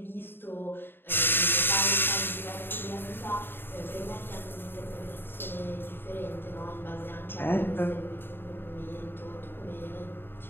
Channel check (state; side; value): late; right; 0.10 ms